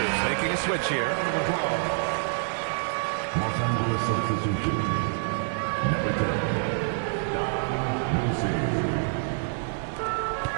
making a switch here. Los Angeles substitution. Number 10, Don Lucy.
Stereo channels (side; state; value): left; silent; 55 dB below the other